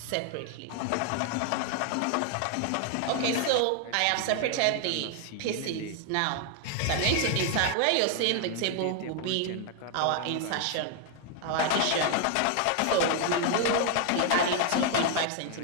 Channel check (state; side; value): different; both; correlation 0.00